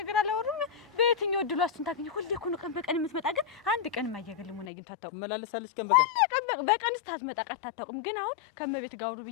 አላወሩም። በየትኛው እድሉ እሱን ታገኘ? ሁሌ እኮ ነው ቀን በቀን የምትመጣ። ግን አንድ ቀን ማያገለሙን አግኝቶ አታውቅም። ትመላለሳለች ቀን በቀን በቀን ስታትመጣ ቀርታ አታውቅም። ግን አሁን ከመቤት ጋር አውሩ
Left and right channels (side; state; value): right; drops out; at 4.7 s